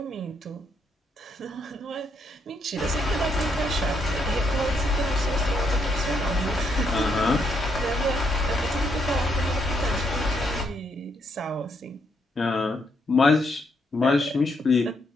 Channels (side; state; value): both; normal; correlation 0.75